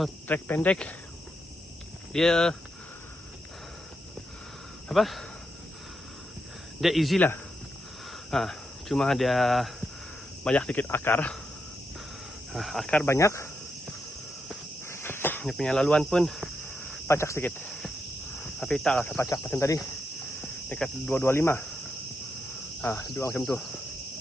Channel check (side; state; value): both; normal; correlation 0.83